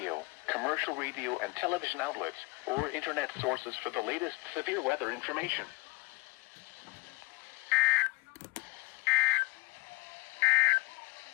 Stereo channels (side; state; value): right; quieter; 25.8 dB